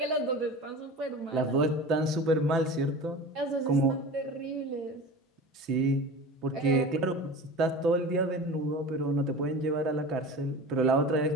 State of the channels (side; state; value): both; normal; correlation 0.34